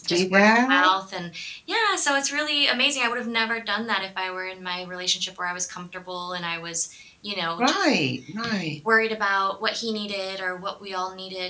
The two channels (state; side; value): identical; both; correlation 1.00